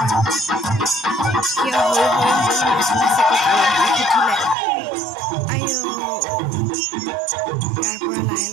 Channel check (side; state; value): left; drops out; at 4.5 s